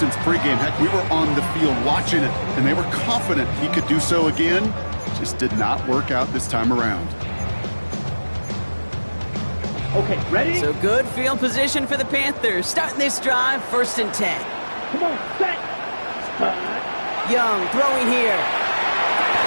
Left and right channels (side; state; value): both; inverted; correlation -1.00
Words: pregame. Heck, we were on the field watching it, and they were confident he could do so again. Just did not work out this time around. Okay, ready? So good field position for the Panthers. Starting this drive, 1st and 10. Come on, set. Young throwing here.